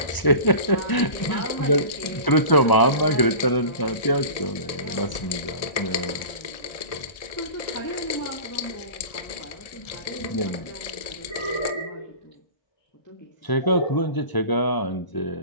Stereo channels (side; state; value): right; late; 1.0 ms